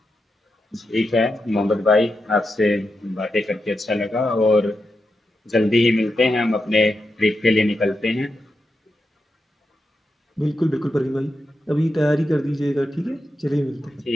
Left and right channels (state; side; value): normal; both; correlation 0.87